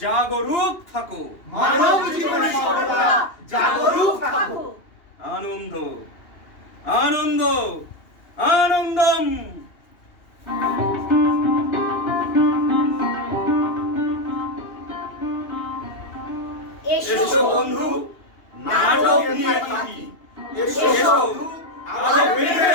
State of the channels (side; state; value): right; late; 2.8 ms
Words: জাগরুক থাকো। মানব জীবনে সর্বদা জাগরুক থাকো। আনন্দ, আনন্দ, আনন্দম। এসো বন্ধু, নাটক নিয়ে থাকি। এসো আরো বেঁধে